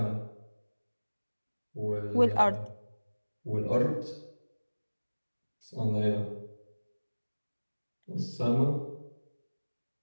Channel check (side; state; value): both; inverted; correlation -1.00